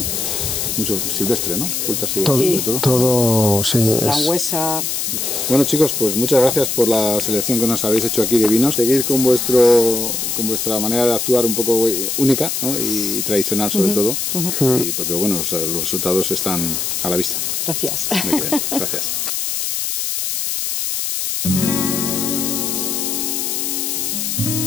Mucho silvestre, ¿no? Frutas silvestres, todo, sí. Frangüesa. Bueno, chicos, pues muchas gracias por la selección que nos habéis hecho aquí de vinos. Seguid con vuestra manera de actuar un poco única, ¿no? Y tradicional sobre todo, y porque bueno, los resultados están a la vista. Gracias. Muy bien, gracias.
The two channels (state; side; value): noise; left; hiss, 1 dB below the sound